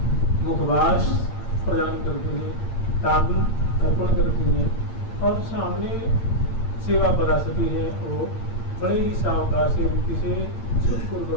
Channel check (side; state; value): right; late; 8.8 ms